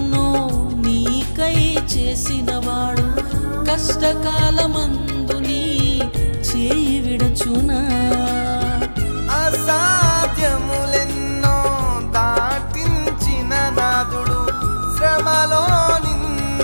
నీకై చేసినవాడు కష్టకాలమందు నీ చేయి విడచునా. అసాధ్యములెన్నో దాటించిన నాదుడు శ్రమలో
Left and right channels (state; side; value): inverted; both; correlation -1.00